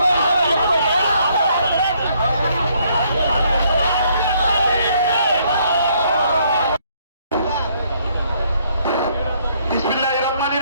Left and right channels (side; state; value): both; inverted; correlation -0.68